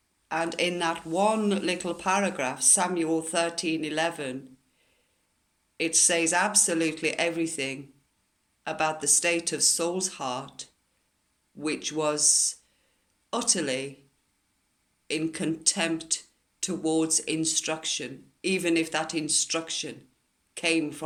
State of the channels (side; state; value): both; identical; correlation 1.00